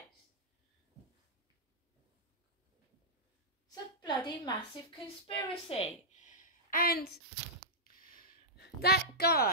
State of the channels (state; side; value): normal; both; correlation -0.11